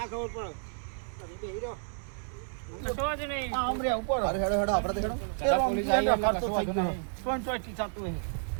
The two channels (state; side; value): silent; left; digital silence